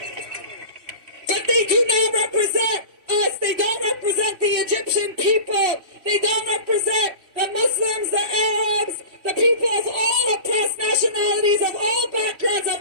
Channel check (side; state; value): left; late; 3.0 ms